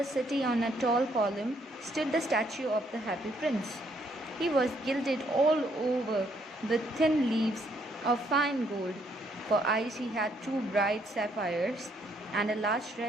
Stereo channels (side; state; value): both; normal; correlation 0.70